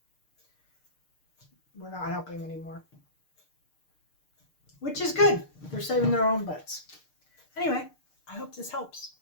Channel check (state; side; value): late; right; 6.6 ms